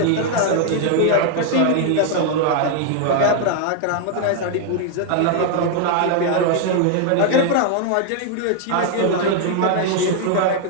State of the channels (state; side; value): different; both; correlation 0.00